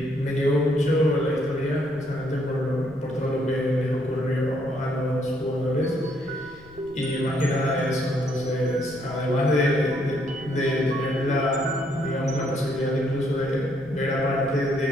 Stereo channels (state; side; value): noise; left; rumble, 22 dB below the sound